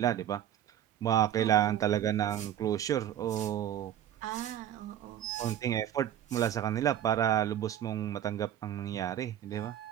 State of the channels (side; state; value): left; quieter; 11.0 dB